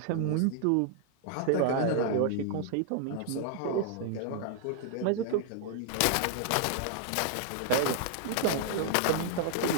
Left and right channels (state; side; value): different; both; correlation 0.00